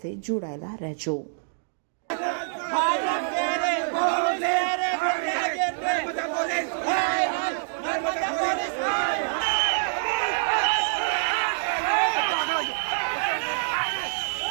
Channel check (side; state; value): left; silent; digital silence